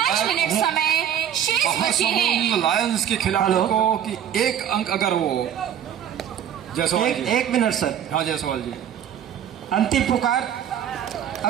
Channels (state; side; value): quieter; left; 9.7 dB